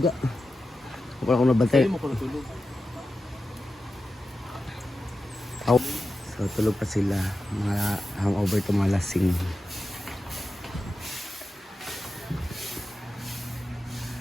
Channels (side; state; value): both; normal; correlation 0.92